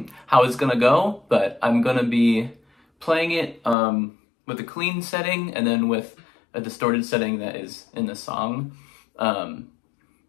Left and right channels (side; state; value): right; drops out; at 3.8 s